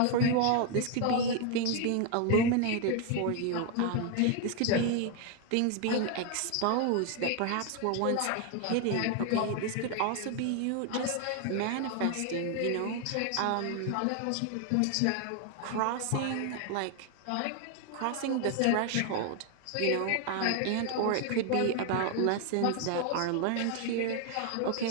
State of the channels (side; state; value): both; different; correlation 0.01